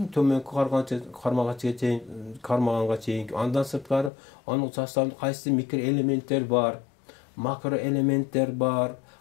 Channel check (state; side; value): drops out; right; at 4.1 s